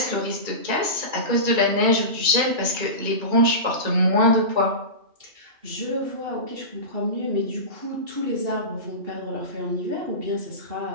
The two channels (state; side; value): late; left; 2.3 ms